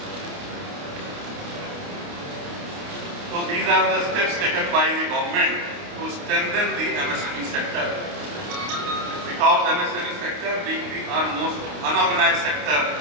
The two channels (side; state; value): left; late; 29 ms